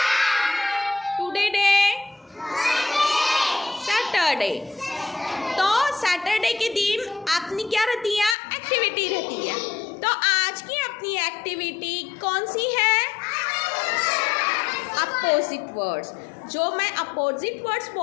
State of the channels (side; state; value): right; drops out; at 8.3 s